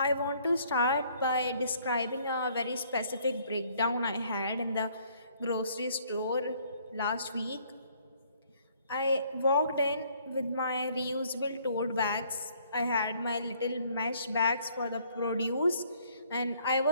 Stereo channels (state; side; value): inverted; both; correlation -0.63